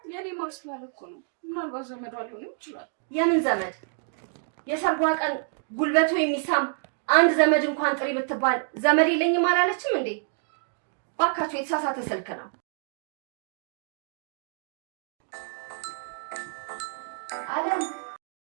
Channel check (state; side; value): silent; left; 60 dB below the other